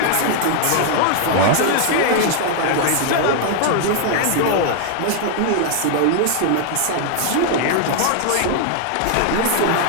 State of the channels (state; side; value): different; both; correlation 0.00